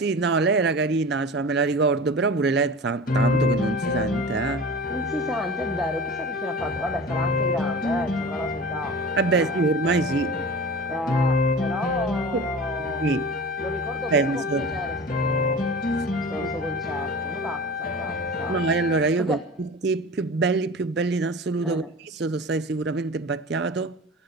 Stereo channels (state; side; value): normal; both; correlation 0.35